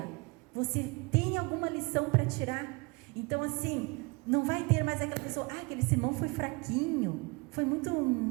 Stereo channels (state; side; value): quieter; left; 27.1 dB